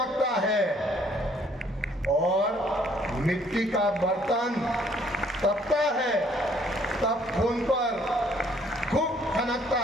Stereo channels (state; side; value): normal; both; correlation 0.63